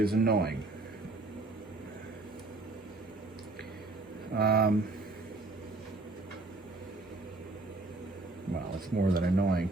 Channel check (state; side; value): quieter; left; 3.1 dB